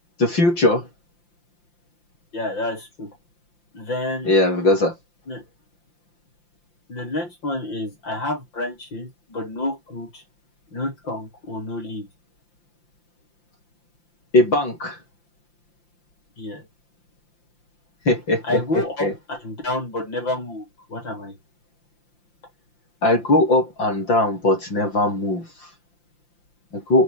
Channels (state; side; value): late; right; 5.8 ms